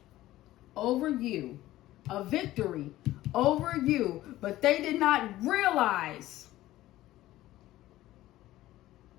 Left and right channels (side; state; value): right; quieter; 15.5 dB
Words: over you. A victory over you. But they did not realize